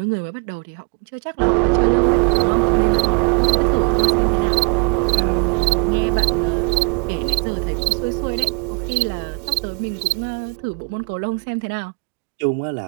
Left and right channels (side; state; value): left; quieter; 35.2 dB